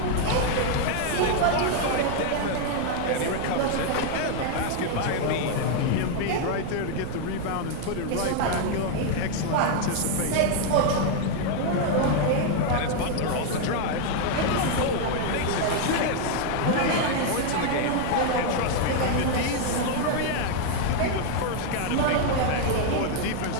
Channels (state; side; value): different; both; correlation 0.00